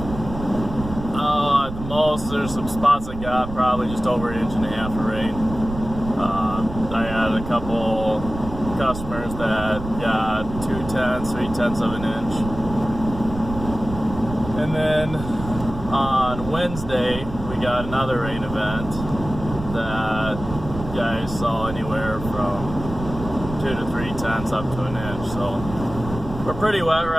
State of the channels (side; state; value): right; noise; rumble, 10 dB below the sound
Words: at the most there's some spots that got probably just over 1.5 inches of rain. I had a couple customers that got 2/10, 3/10 of an inch. And then on Wednesday, we got another rain event that guys saw anywhere from 2 to 3/10 up to an inch. So we're pretty wet